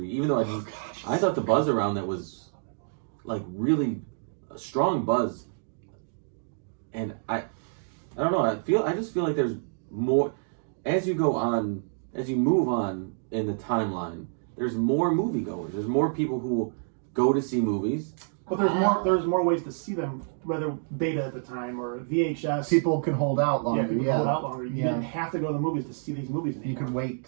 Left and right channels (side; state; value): left; silent; digital silence